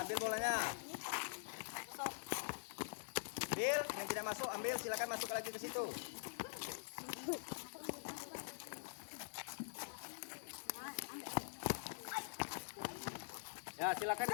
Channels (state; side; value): silent; right; digital silence